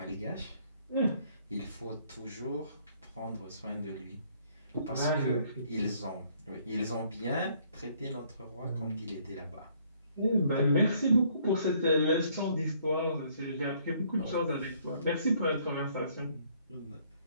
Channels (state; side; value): inverted; both; correlation -0.64